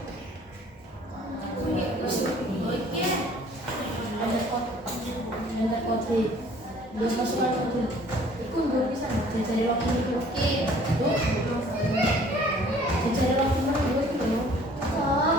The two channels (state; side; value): normal; both; correlation 0.54